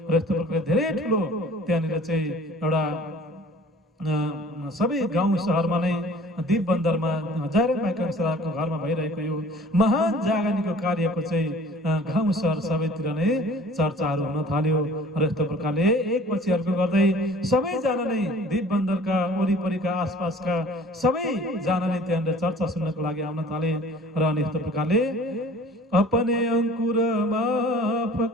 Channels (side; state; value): both; normal; correlation 0.49